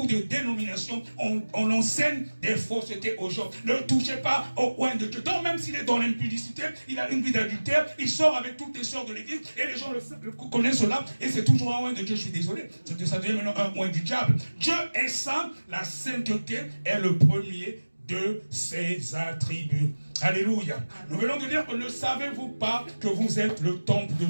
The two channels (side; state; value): both; inverted; correlation -1.00